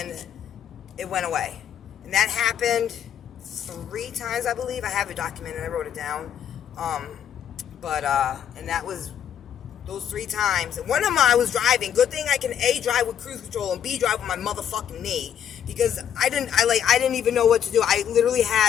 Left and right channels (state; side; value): quieter; right; 9.3 dB